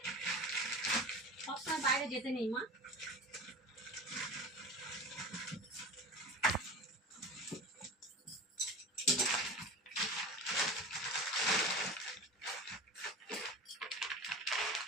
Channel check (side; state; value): both; normal; correlation 0.32